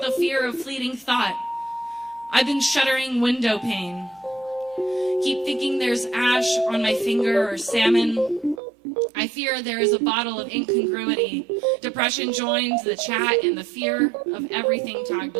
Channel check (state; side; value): drops out; left; at 8.6 s